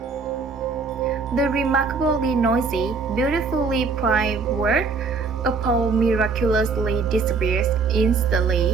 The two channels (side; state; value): left; quieter; 4.7 dB